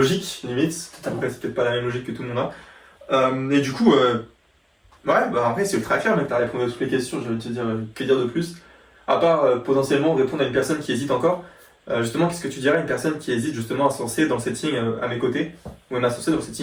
limite. Totalement. Après, c'est peut-être pas la même logique que tout le monde a. Et du coup, ouais, bah après, c'est ultra clair, mec, t'as répondu à toutes les questions, j'allais te dire, que dire de plus? À part potentiellement répondre à une personne qui hésite encore, justement, qu'est-ce que tu dirais à une personne qui hésite justement à se lancer dans le setting à mes côtés, ou même à se lancer dans le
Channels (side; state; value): both; identical; correlation 1.00